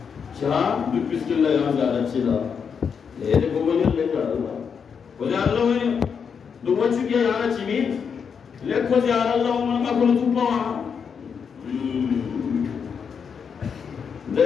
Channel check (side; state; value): right; quieter; 6.6 dB